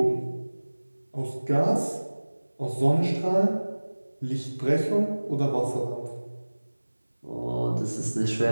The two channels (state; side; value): inverted; both; correlation -1.00